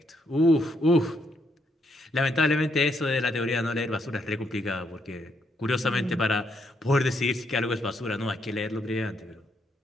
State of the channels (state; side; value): normal; both; correlation 0.75